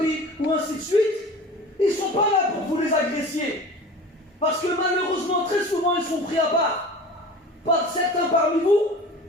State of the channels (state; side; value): normal; both; correlation 0.38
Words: ou ainsi de suite, ils ne sont pas là pour vous les agressier. Parce que malheureusement, très souvent, ils sont pris à part par certains parmi vous